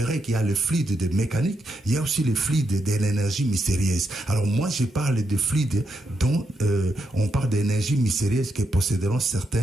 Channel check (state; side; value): normal; both; correlation 0.82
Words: qu'il y a le fluide de mécanique, il y a aussi le fluide de l'énergie mystérieuse. Alors, moi, je parle de fluide dont on parle d'énergie mystérieuse que posséderont